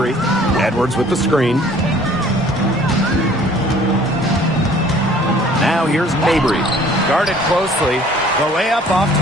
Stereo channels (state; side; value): normal; both; correlation 0.54